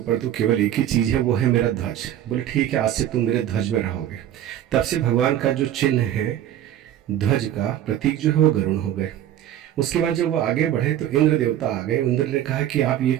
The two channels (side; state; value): left; quieter; 11.5 dB